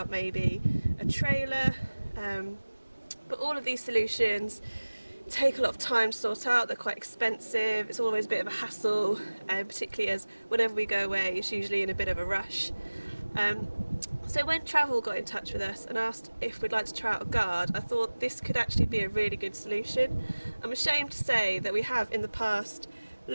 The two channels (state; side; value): inverted; both; correlation -1.00